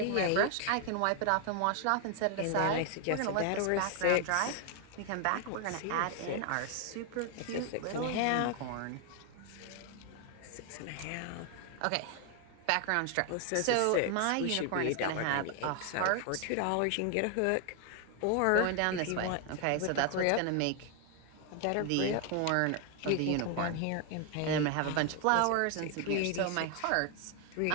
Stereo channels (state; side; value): different; both; correlation 0.00